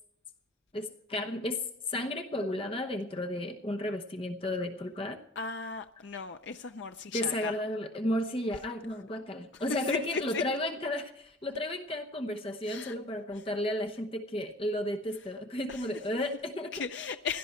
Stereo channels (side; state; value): both; normal; correlation 0.48